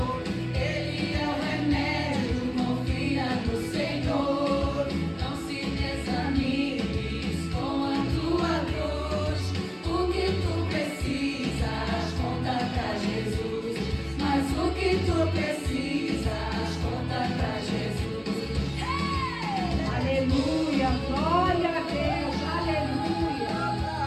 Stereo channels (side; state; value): both; identical; correlation 1.00